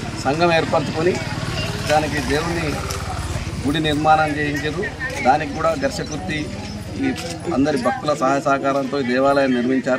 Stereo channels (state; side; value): identical; both; correlation 1.00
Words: సంఘం ఏర్పరచుకొని దానికి దేవుని గుడి నిర్మాణం చేయించారు. దానికి కూడా ఘర్షకుర్తి ఈ అందరి భక్తుల సహాయ సహకారంతో ఈ దేవాలయం